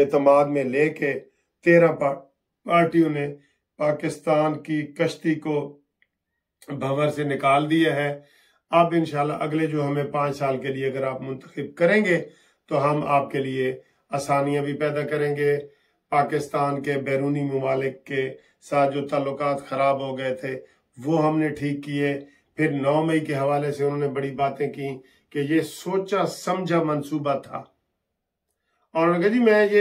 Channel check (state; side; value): identical; both; correlation 1.00